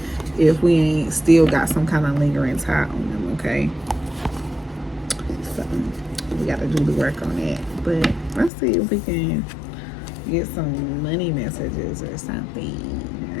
if we ain't still got some kind of lingering tie on them, okay? So, we got to do the work on that. But let's see if we can get some money messages or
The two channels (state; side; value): drops out; right; at 8.5 s